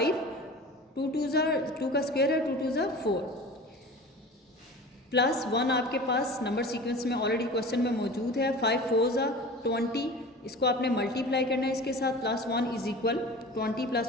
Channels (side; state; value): both; normal; correlation 0.37